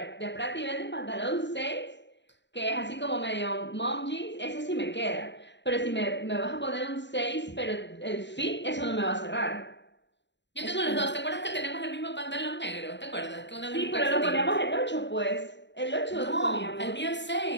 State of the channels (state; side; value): late; right; 0.52 ms